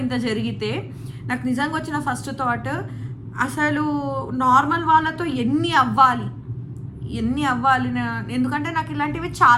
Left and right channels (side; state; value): both; identical; correlation 1.00